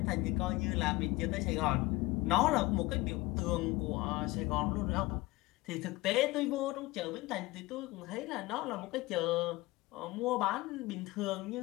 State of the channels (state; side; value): quieter; right; 20.8 dB